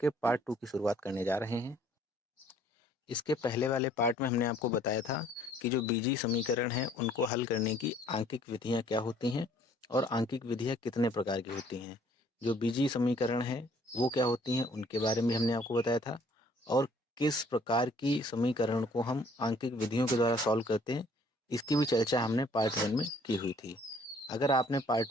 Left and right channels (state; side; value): normal; both; correlation 0.59